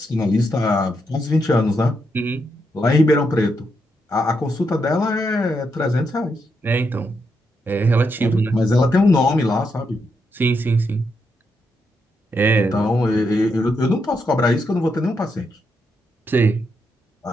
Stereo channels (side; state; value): both; normal; correlation 0.81